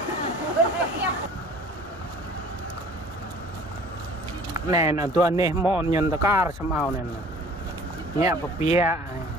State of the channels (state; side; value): normal; both; correlation 0.48